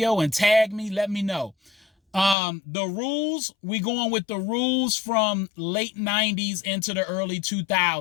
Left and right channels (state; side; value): drops out; right; at 2.4 s